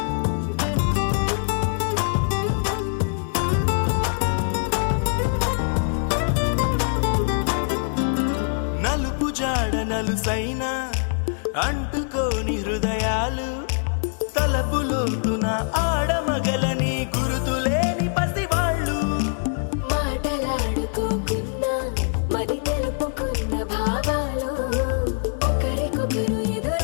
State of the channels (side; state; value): right; silent; digital silence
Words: నలుసైనా అంటుకోని హృదయాలు తలపులోతున ఆడమగలని గురుతులేని పసివాళ్ళు మాటలాడుకోకున్నా మరి తెలుపుకున్న భావాలు ఒకరికొకరు